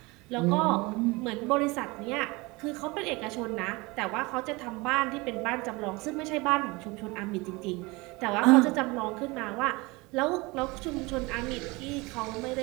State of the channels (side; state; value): left; quieter; 24.3 dB